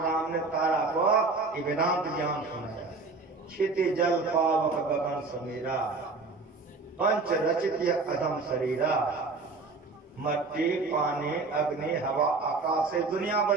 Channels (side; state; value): left; quieter; 4.0 dB